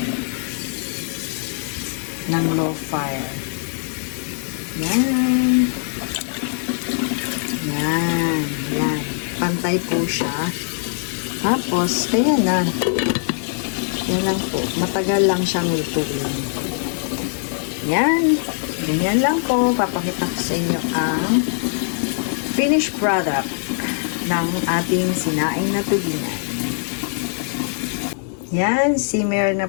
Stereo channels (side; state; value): right; silent; 56 dB below the other